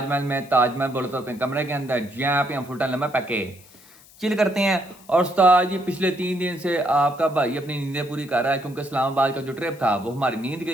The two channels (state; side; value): noise; left; hiss, 24 dB below the sound